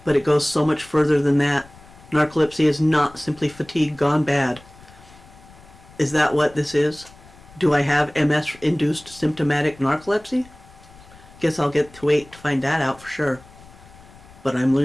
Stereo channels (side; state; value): left; noise; rumble, 23 dB below the sound